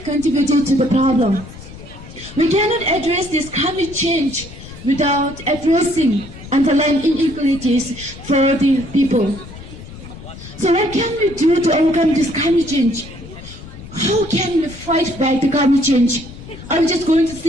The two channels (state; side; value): noise; left; rumble, 15 dB below the sound